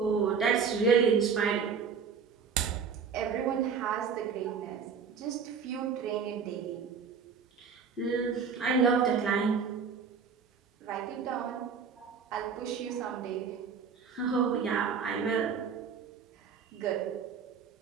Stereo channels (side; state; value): left; quieter; 6.2 dB